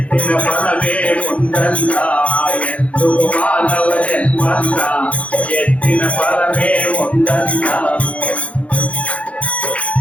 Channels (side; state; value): right; late; 0.064 ms